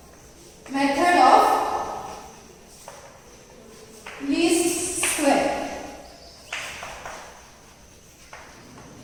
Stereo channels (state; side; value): identical; both; correlation 1.00